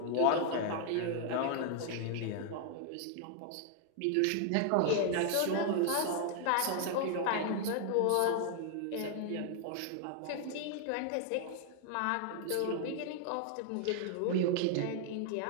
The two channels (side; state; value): both; different; correlation 0.00